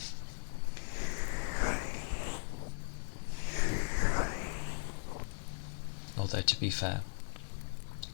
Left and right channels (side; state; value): right; silent; digital silence